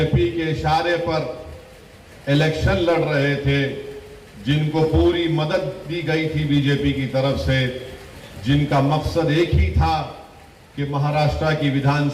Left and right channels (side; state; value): both; identical; correlation 1.00